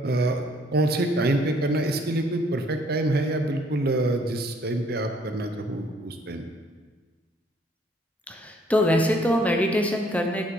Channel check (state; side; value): normal; both; correlation 0.63